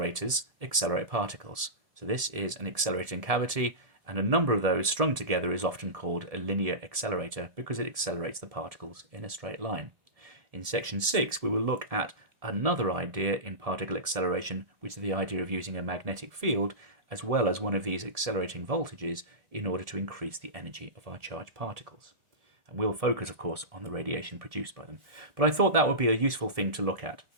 accelerate particles. So this is an accelerating cavity, and a number of those strung together is often called a linear accelerator because it accelerates the particles in a straight line. In section 6 we will look at another idea in particle acceleration, which is the idea of using a magnetic field as well as one of these accelerating voltages in order to increase the energy of our charged particles. And we'll focus, of course, on the radiation produced by them. But I thought that would be a useful thing to look at,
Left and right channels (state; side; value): late; left; 1.7 ms